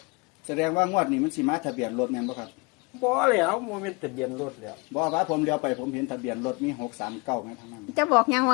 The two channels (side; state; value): right; quieter; 28.3 dB